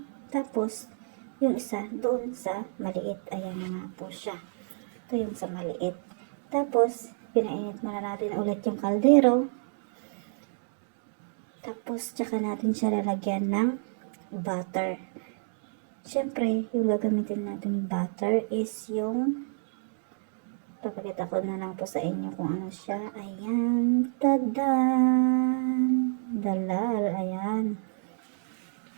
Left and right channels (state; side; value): silent; left; digital silence